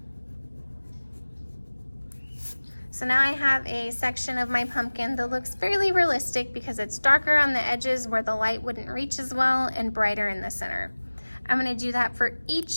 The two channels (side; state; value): both; inverted; correlation -1.00